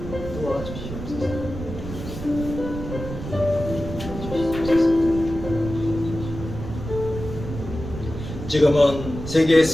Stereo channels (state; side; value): noise; right; rumble, 9 dB below the sound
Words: 도와주시옵소서. 지금은 세계